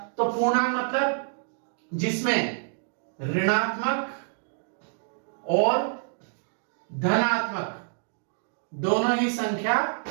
तो पूर्णांक मतलब जिसमें ऋणात्मक और धनात्मक दोनों ही संख्या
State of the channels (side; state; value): left; silent; digital silence